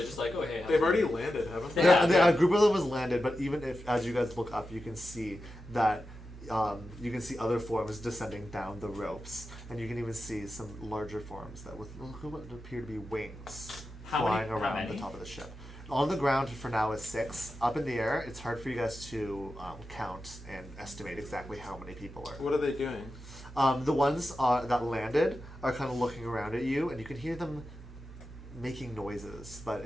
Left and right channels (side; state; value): both; normal; correlation 0.91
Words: just like, oh hey? They've already landed, haven't they? Yeah. A group of them was landed, but even if, as you guys look up, you can see that you can see other forms descending down the ropes, and you can even see some larger forms that with what appear to be wings flying around the top of the ship. On the ground for now is 6. Up in the air, it's hard for you guys to count and estimate exactly how many people are. What are they doing? The ones that landed are kind of looking around at you, and you can hear them making noises, but